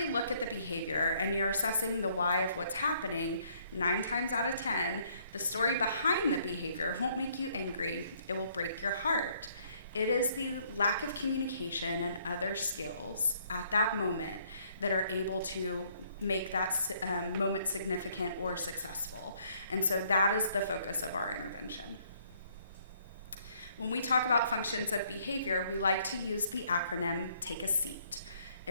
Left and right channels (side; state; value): both; inverted; correlation -0.66